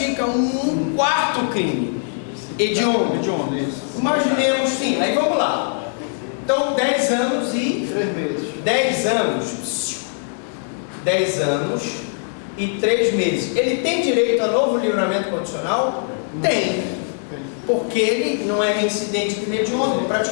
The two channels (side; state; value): right; silent; digital silence